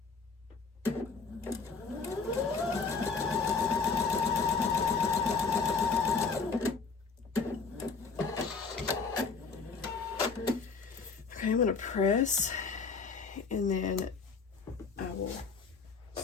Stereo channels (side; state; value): right; quieter; 4.9 dB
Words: Okay, I'm going to press and then I will